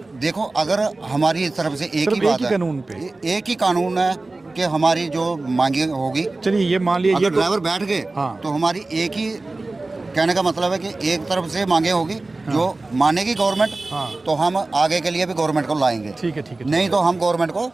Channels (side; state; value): left; quieter; 3.2 dB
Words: देखो, अगर हमारी तरफ से एक ही बात है, कानून पे एक ही कानून है कि हमारी जो मांगे होगी। चलिए ये मान लिया, अगर ड्राइवर बैठ गए तो हमारी एक ही कहने का मतलब है कि एक तरफ से मांगे होगी जो मानेगी गवर्नमेंट, तो हम आगे के लिए भी गवर्नमेंट को लाएंगे। ठीक है, ठीक है। नहीं तो हम गवर्नमेंट को